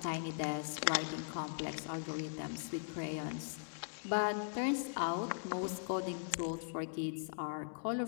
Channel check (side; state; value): right; silent; digital silence